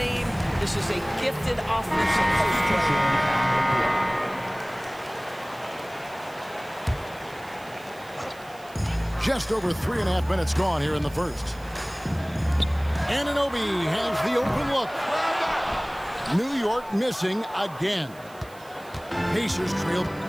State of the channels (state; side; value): noise; right; hiss, 24 dB below the sound